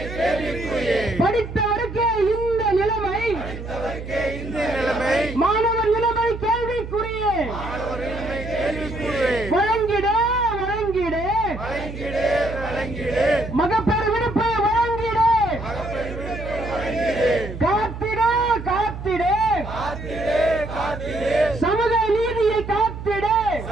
படித்தவருக்கே இந்த நிலைமை மாணவர் நிலைமை கேள்விக்குரிய வழங்கிட வழங்கிட மகப்பேறு விடுப்பை வழங்கிட காத்திட காத்திட சமூக நீதியை காத்திட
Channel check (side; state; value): right; noise; hum, 9 dB below the sound